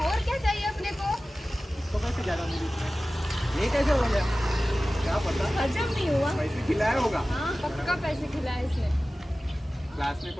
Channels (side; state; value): both; normal; correlation 0.96